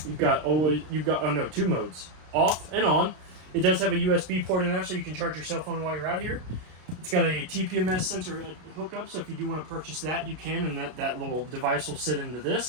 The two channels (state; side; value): late; left; 33 ms